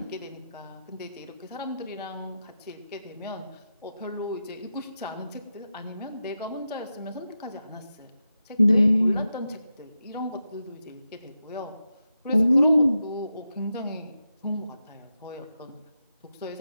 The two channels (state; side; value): inverted; both; correlation -0.89